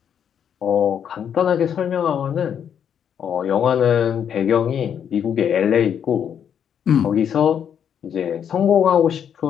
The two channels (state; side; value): quieter; right; 8.5 dB